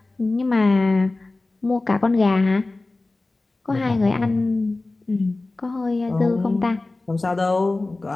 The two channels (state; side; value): quieter; right; 3.2 dB